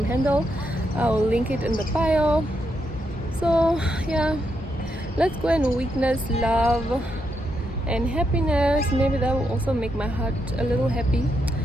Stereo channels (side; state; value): both; normal; correlation 0.81